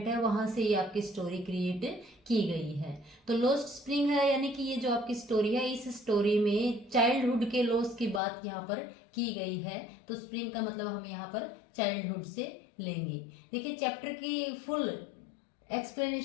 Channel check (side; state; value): right; drops out; at 8.2 s